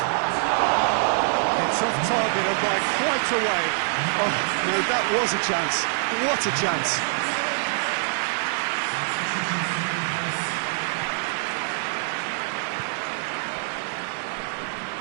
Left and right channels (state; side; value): silent; left; digital silence